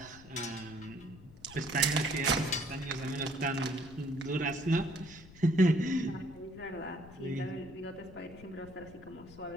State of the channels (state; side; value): noise; left; rumble, 19 dB below the sound